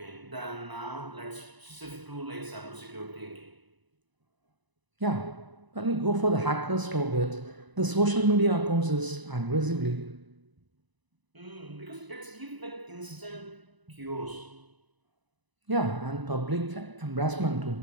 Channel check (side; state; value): left; late; 1.0 ms